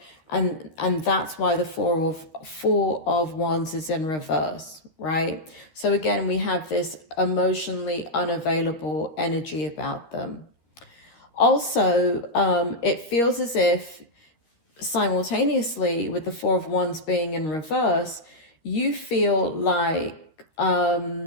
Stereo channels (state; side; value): late; right; 13 ms